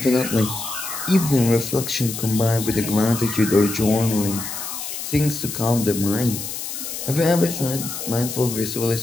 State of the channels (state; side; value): noise; left; hiss, 7 dB below the sound